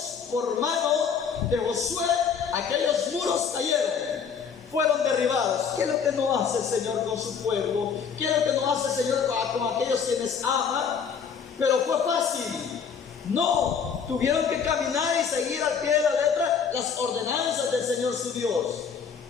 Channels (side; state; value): right; quieter; 6.6 dB